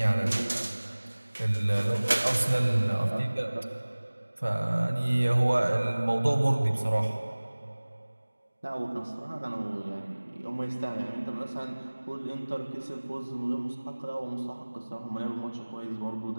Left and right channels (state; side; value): inverted; both; correlation -1.00